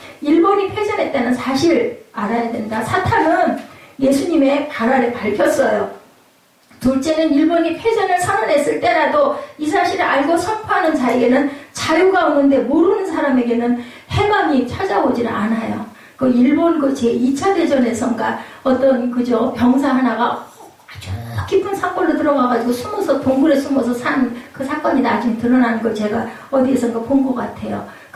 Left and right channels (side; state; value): both; identical; correlation 1.00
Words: 일본이 패전했다는 사실 알아야 된다. 사탄은 예수님의 발 아래 밟혔어요. 둘째는 일본이 패전을 선언했을 때라도 이 사실을 알고 선포하는 자에게는 자유가 오는데 모르는 사람에게는 해방이 찾아오질 않아요. 일본 제2차 대전에선가 어떤 병사 하나가 아주 깊은 산골로 들어가가지고 동굴에 숨어서 산 그 사건이 나중에 드러나는 걸 제가 어디에선가 본 것 같아요.